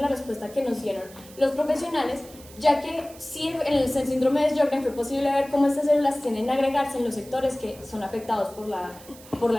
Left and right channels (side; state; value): right; noise; hiss, 20 dB below the sound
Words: respuesta que nos dieron los profesionales, ya que sí en el síndrome de Sjögren fue posible ver cómo estas células tienden a agregarse en los sectores que son afectados por